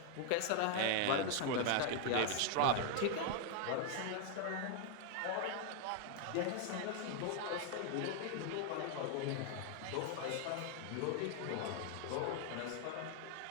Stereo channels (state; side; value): different; both; correlation 0.00